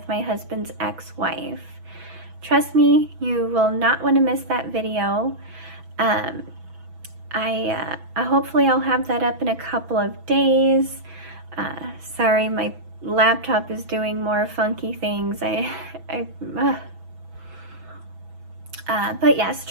my husband's ex-wife. Trust me, you will not want to miss that video. Hopefully I'll have that up in a couple of days. Sorry, my laptop is doing more funky things. But yes,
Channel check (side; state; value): left; late; 6.1 ms